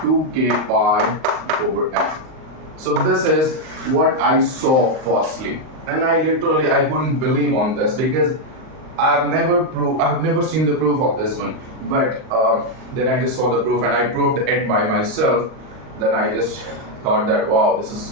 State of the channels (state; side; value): late; left; 38 ms